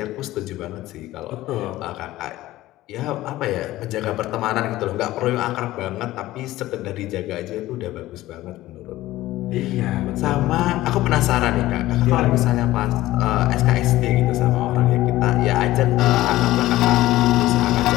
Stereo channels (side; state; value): right; quieter; 16.3 dB